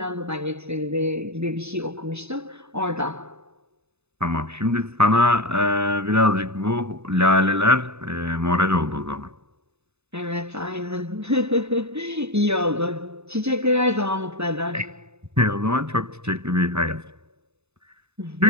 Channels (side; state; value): left; late; 0.80 ms